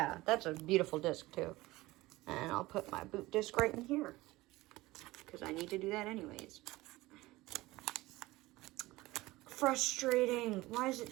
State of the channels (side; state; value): left; quieter; 19.3 dB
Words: that's a beautiful disc, too. And I'll put my boot disc right in here, because I need to do that anyways. Frustrating. Why does it